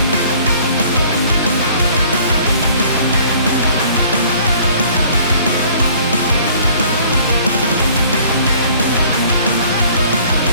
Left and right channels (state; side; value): inverted; both; correlation -0.55